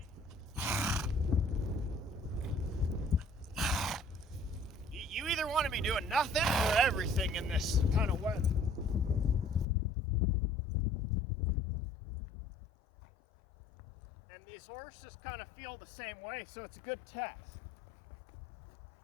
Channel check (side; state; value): right; drops out; at 9.7 s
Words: either want to be doing nothing or everything in this kind of weather. And these horses kind of feel the same way, so it's a good test.